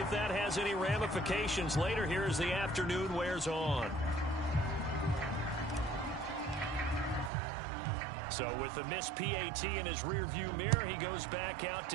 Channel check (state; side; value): drops out; left; at 7.3 s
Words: that has any ramifications later here as the afternoon wears on. So with the missed PAT in his rearview mirror, he goes back out